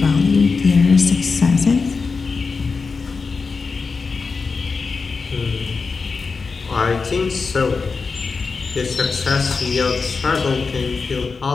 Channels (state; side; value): quieter; right; 4.7 dB